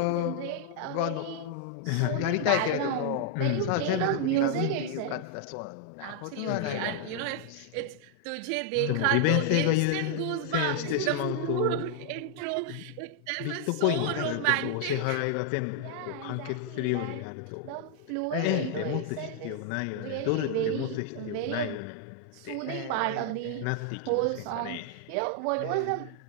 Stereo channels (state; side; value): different; both; correlation 0.00